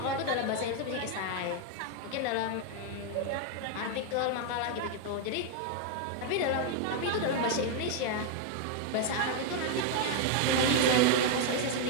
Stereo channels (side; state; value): both; different; correlation 0.01